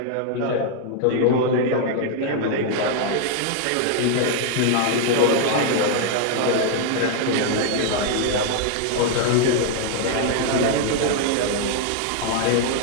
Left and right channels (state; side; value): different; both; correlation 0.00